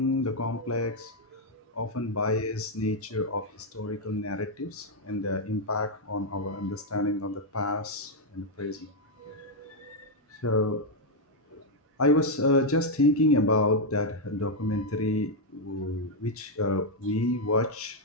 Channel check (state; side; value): normal; both; correlation 0.00